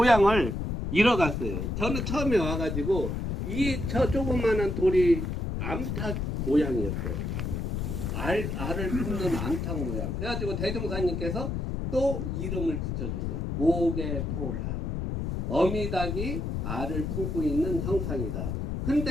잃어갔어요. 저는 처음에 와가지고 저 조그마한 돌이 암탉 모양이었어요. 알을 품는 암탉 모양. 그래가지고 대종사님께서 또 이름을 붙여줬어요. 목에포란. 어미닭이 알을 품고 있는 형상이다.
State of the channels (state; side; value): noise; left; rumble, 2 dB below the sound